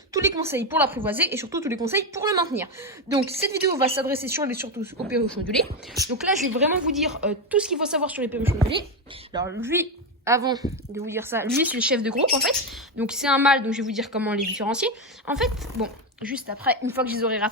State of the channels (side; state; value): both; normal; correlation 0.10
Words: tous les conseils pour l'apprivoiser et surtout tous les conseils pour le maintenir. Donc cette vidéo va s'adresser surtout aux perruches ondulés. Donc là je vais vraiment vous dire tout ce qu'il faut savoir sur les perruches ondulés. Alors lui, avant de vous dire ça, lui c'est le chef de groupe en fait. Donc c'est un mâle, donc je vais vous dire comment les différencier. En fait, bon, juste après, une fois que je les aurai